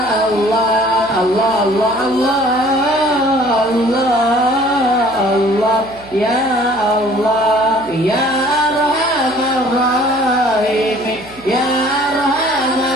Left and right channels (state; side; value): noise; right; hum, 22 dB below the sound